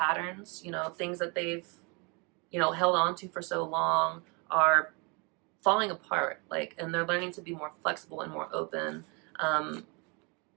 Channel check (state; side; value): quieter; left; 31.3 dB